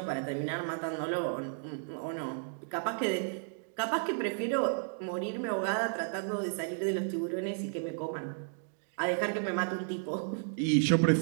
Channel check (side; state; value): left; silent; digital silence